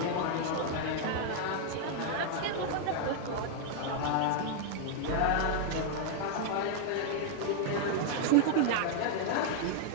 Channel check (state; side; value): different; both; correlation 0.00